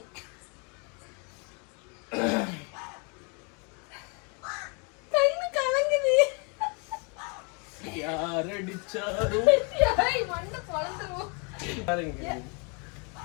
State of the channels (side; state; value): right; quieter; 34.2 dB